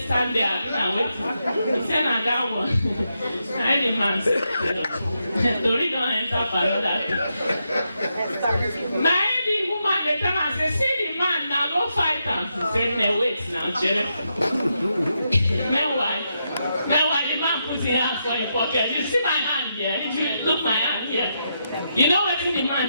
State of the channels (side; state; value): both; inverted; correlation -0.83